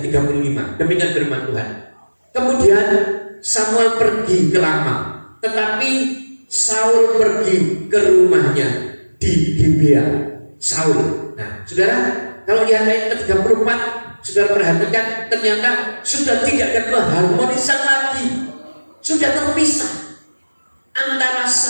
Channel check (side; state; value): both; inverted; correlation -1.00